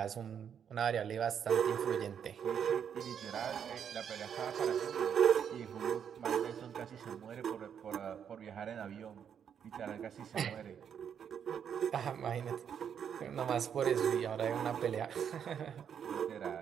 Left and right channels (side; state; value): left; quieter; 8.1 dB